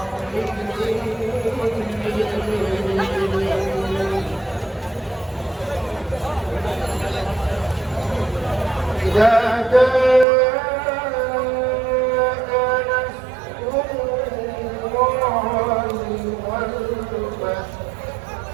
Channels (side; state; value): left; drops out; at 10.2 s